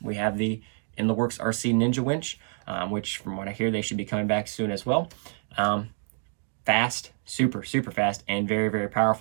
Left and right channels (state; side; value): silent; left; digital silence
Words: We have the In the Works RC Ninja winch, which from what I hear, they should be coming back soon as well. Fast, super, super fast, and very, very